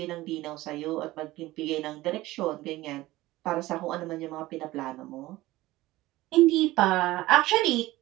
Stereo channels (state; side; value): quieter; left; 17.9 dB